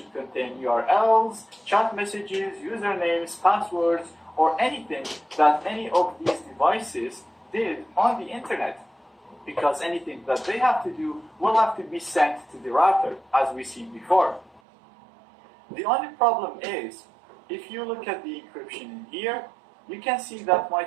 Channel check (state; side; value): drops out; left; at 14.6 s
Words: contain URLs, chat messages, usernames, passwords, or anything that any of these devices did on the internet. Because anything that they have to do will have to be sent to the router, as we seen before. The only problem is, if you look at the encryption in here, you can see that my